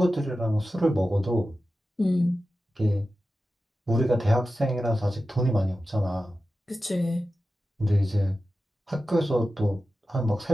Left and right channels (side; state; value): both; normal; correlation 0.93